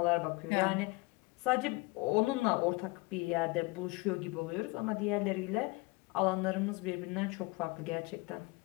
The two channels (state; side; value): quieter; right; 25.2 dB